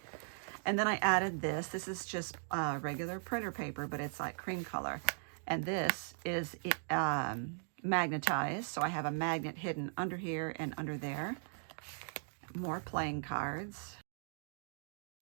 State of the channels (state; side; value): silent; left; digital silence